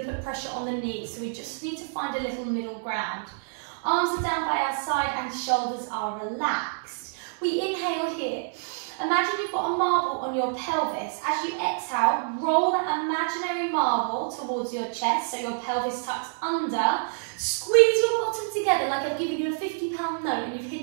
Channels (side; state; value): left; silent; 59 dB below the other